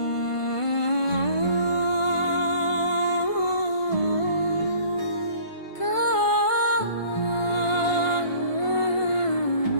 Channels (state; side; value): late; right; 1.5 ms